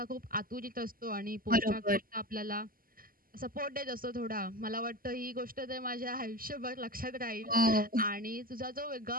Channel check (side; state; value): left; late; 0.42 ms